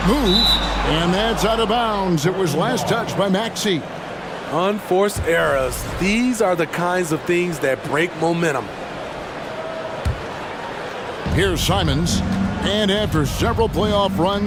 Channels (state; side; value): identical; both; correlation 1.00